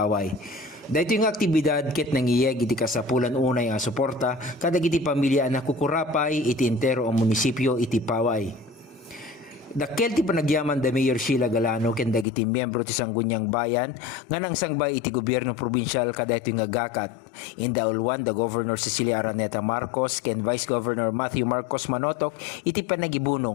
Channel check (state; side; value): drops out; right; at 12.2 s